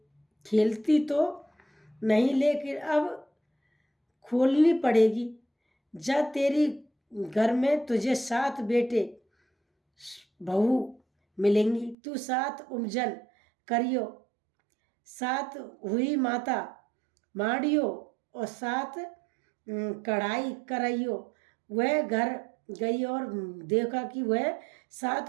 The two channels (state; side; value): drops out; left; at 12.0 s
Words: खेलती तो नहीं, लेकिन अब खोलनी पड़ेगी। जब तेरी घर में तुझे 7 बेटे बहू मिलेंगी, तू 7 उपजन करियो, 7 हुई माता माड़ियो और 7 कढ़ाई कराइयो। वह घर गई और देखा कि वह